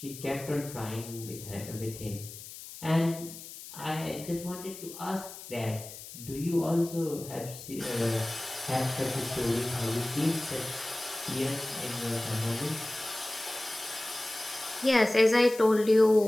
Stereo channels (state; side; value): noise; left; hiss, 13 dB below the sound